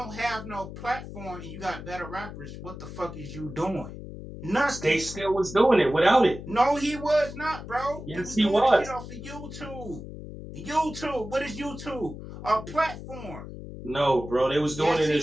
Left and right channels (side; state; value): left; noise; hum, 11 dB below the sound